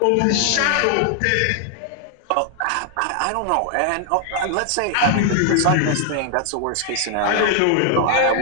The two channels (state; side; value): different; both; correlation 0.00